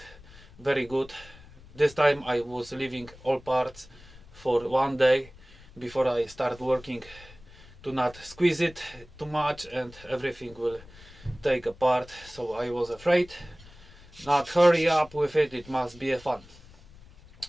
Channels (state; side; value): noise; left; rumble, 22 dB below the sound